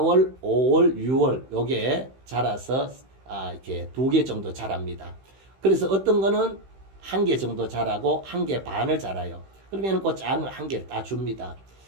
5월, 6월 요게 자라서 이렇게 2개 정도 자랍니다. 그래서 어떤 거는 1개 정도 자라고 1개 반을 자라요. 그러면 그 작은 걸 1개를 따줍니다.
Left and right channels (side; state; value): left; late; 15 ms